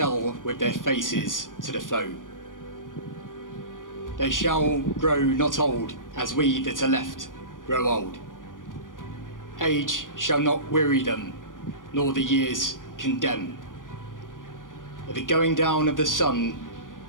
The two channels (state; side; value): late; right; 0.89 ms